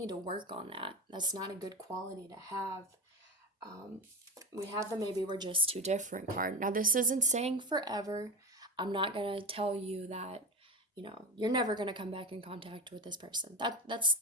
to work on that. That's not a good quality to have. Um, we have the maybe we're just too different card. Now, this isn't saying forever. I'm not going to tell you that, you're never going to come back in contact with this person. That's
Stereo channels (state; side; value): normal; both; correlation 0.20